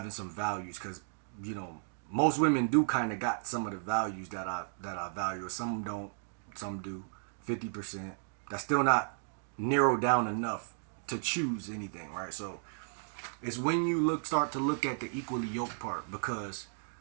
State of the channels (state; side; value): silent; left; digital silence